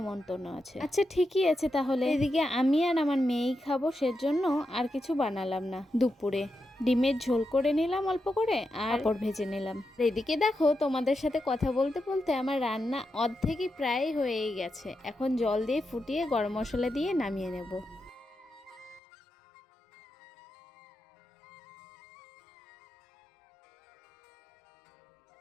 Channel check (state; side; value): drops out; right; at 19.0 s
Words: আছে। আচ্ছা ঠিকই আছে তাহলে। এদিকে আমি আর আমার মেয়েই খাবো, সেজন্য আর কিছু বানালাম না। দুপুরে ডিমের ঝোল করে নিলাম অল্প করে, আর পাঁপড় ভেজে নিলাম। এদিকে দেখো তোমাদের সাথে কথা বলতে বলতে আমার রান্না অর্ধেকই প্রায় হয়েই গেছে। এখন জল দিয়ে ফুটিয়ে গরম মশলা দিয়ে নামিয়ে নেব।